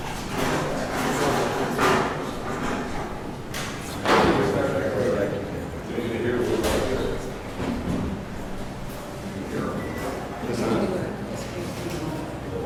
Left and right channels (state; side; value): identical; both; correlation 1.00